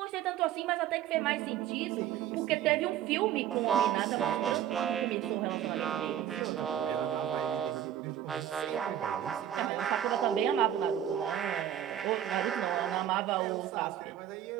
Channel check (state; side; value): quieter; left; 10.6 dB